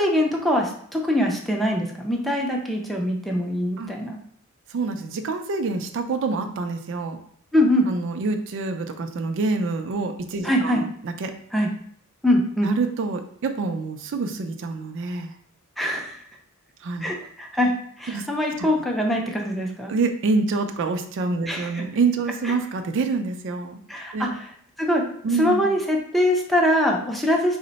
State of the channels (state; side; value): normal; both; correlation 0.56